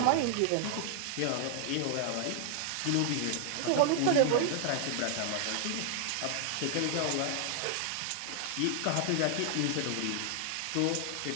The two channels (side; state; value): both; different; correlation 0.00